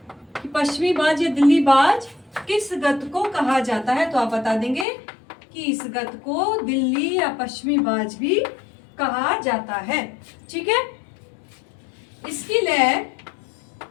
कि पश्चिमी बाज या दिल्ली बाज किस गत को कहा जाता है, तो आप बता देंगे कि इस गत को दिल्ली या पश्चिमी बाज भी कहा जाता है। ठीक है, इसकी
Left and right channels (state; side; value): drops out; right; at 4.9 s